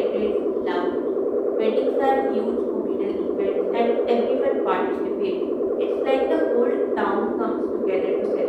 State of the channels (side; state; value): both; identical; correlation 1.00